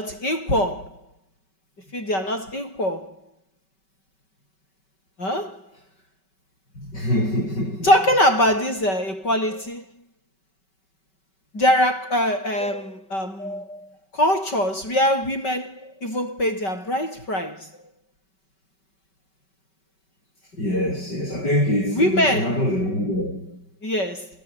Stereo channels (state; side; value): late; right; 5.2 ms